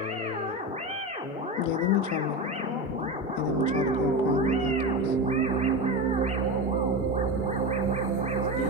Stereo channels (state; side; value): normal; both; correlation 0.21